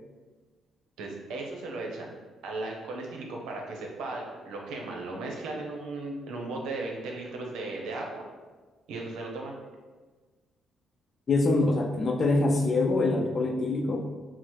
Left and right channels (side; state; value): both; normal; correlation 0.78